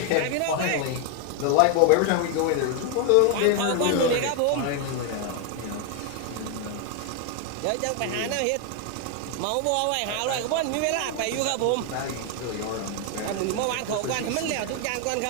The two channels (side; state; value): both; different; correlation 0.01